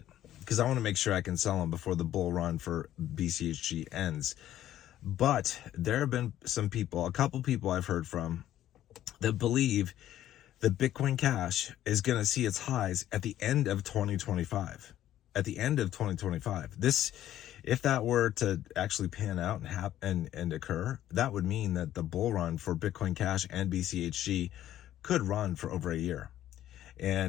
because I want to make sure I can sell them before the bull run for BCHG ends. But there have been a couple people I've heard from, that believe that Bitcoin Cash is going to see its highs at the end of 2025. At the end of 2025. This, if that were to actually pan out and occur, that would mean that the bull run for Bitcoin Cash and BCHG could run for over a year.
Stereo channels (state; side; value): quieter; right; 12.6 dB